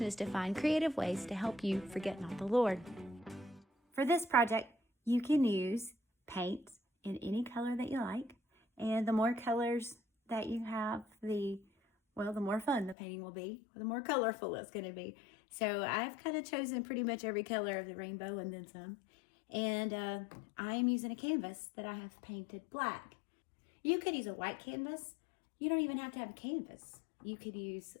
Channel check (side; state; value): right; drops out; at 13.0 s